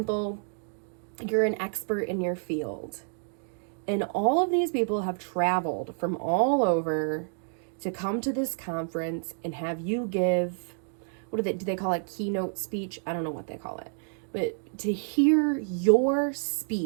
you're an expert in your field, and all of these people have traveled from all over to come to this conference and have you give, do they call it, keynote speech? I don't know what they call it. But to hear your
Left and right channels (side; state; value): left; silent; 59 dB below the other